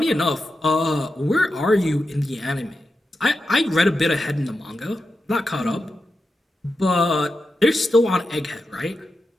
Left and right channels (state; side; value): normal; both; correlation 0.89